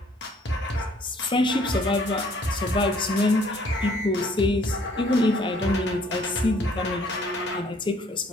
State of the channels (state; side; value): normal; both; correlation 0.60